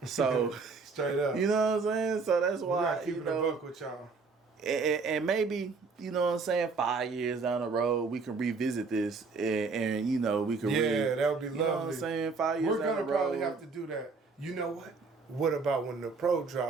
So straight up. you know what I'm saying? So that's We why gotta keep you it a know, buck with y'all. and maybe, you know what I'm saying, 5 years down the road we can revisit this and you know, we can that would be lovely. You know what I'm saying? 5 years We're down gonna the road. probably have to do that. You know what? What about when the Pro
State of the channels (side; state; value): left; quieter; 4.4 dB